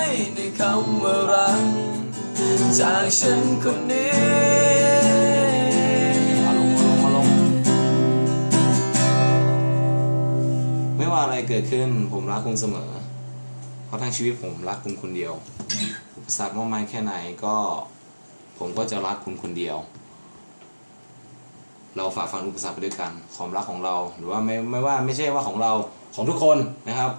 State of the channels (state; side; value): inverted; both; correlation -1.00